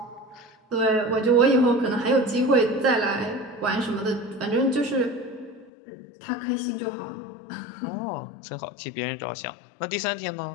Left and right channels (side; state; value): right; drops out; at 5.7 s